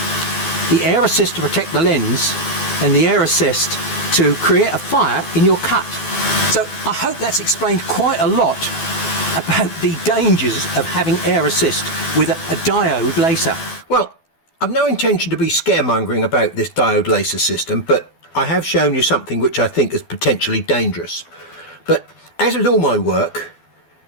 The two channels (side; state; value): right; late; 12 ms